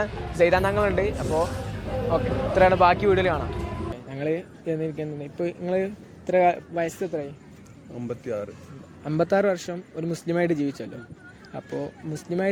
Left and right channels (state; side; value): identical; both; correlation 1.00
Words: സൈദാന്തങ്ങളുണ്ട്. അപ്പോൾ ഓക്കെ, ഇത്രയാണ്. ബാക്കി വീഡിയോയിൽ കാണാം. ഞങ്ങൾ ഇപ്പോൾ നിങ്ങൾ ഇത്ര വയസ്സ് എത്രയായി? 56 വർഷം ഒരു മുസ്ലിമായിട്ട് ജീവിച്ചല്ലോ. അപ്പോൾ